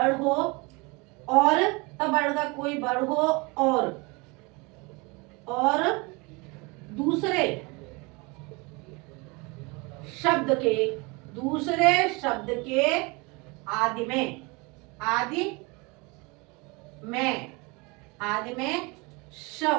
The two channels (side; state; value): left; quieter; 27.4 dB